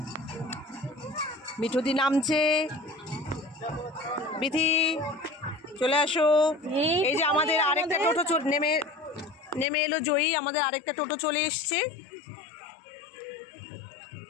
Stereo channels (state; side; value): drops out; right; at 9.7 s